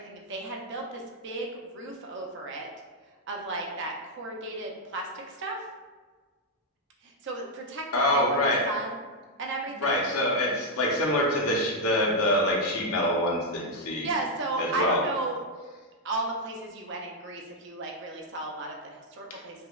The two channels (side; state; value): both; normal; correlation -0.01